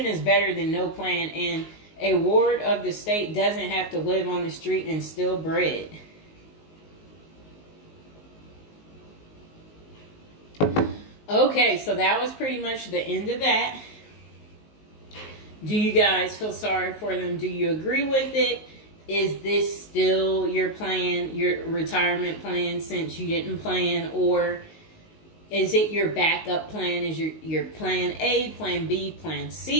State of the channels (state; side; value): late; right; 19 ms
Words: is better than no plan, and a ward of the state doesn't have to live on the street and steal bread. Okay, so that was pretty much the end of that. Do you guys feel sorry for them? Do you agree with it? Is this still your plan, your retirement plan, since you didn't plan? Or is it your backup plan? Is your plan A, plan B, plan